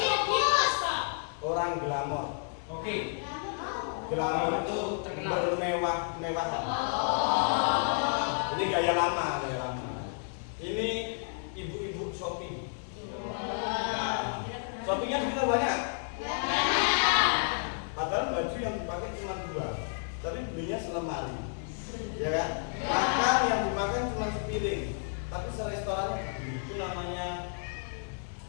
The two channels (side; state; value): right; silent; 57 dB below the other